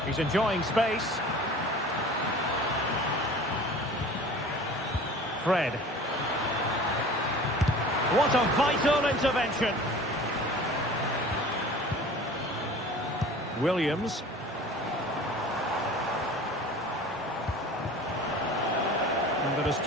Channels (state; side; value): normal; both; correlation 0.42